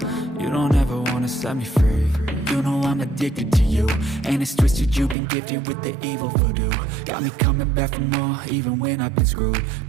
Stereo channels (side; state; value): left; drops out; at 5.2 s